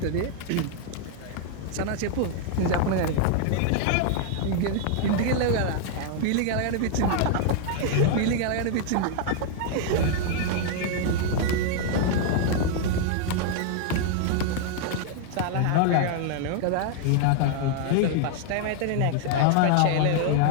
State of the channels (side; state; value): both; different; correlation 0.00